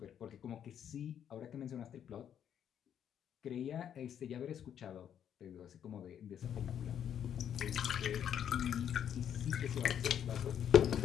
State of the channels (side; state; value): right; quieter; 9.2 dB